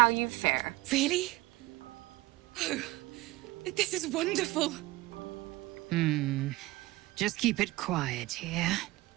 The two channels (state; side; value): quieter; left; 20.1 dB